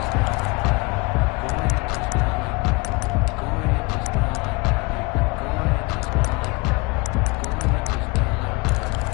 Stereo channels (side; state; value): right; quieter; 26.3 dB